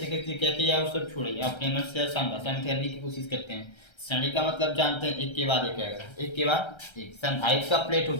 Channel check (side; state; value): right; late; 1.3 ms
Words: कैसे क्या किया वो सब छोड़िए, अपने मन से संभाषण करने की कोशिश करते हैं। श्रेणी का मतलब जानते हैं, एक के बाद एक आएगा, एक के बाद एक। संधारित्र का प्लेट